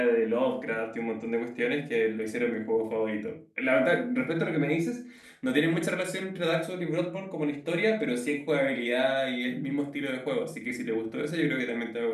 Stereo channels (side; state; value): both; identical; correlation 1.00